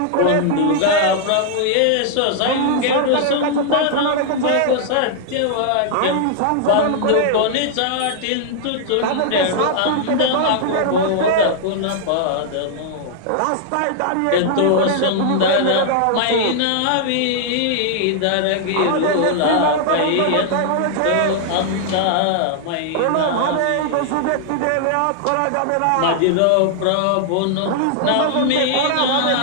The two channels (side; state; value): both; different; correlation -0.01